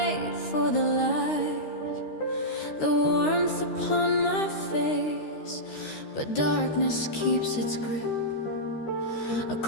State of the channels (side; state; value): right; late; 13 ms